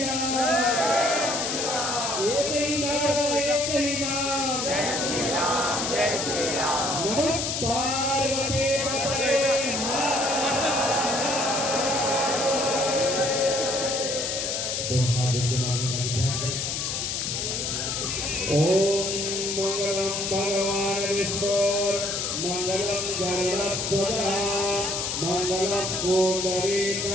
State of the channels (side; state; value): left; noise; hiss, 1 dB below the sound